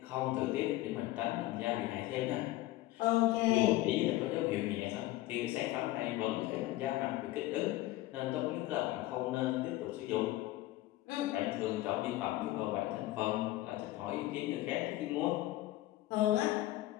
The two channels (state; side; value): quieter; right; 16.6 dB